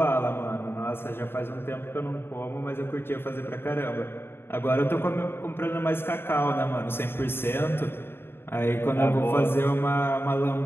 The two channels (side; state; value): right; late; 0.11 ms